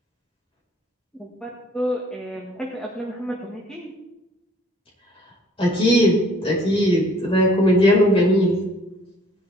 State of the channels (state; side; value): normal; both; correlation 0.57